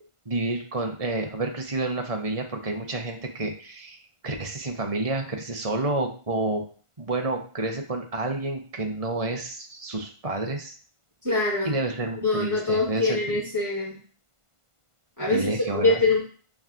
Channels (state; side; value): late; left; 1.5 ms